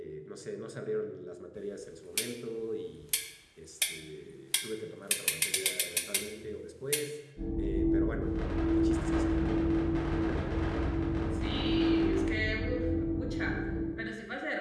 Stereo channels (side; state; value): both; identical; correlation 1.00